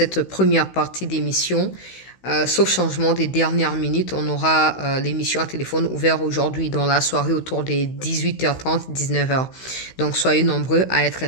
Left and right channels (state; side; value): late; right; 16 ms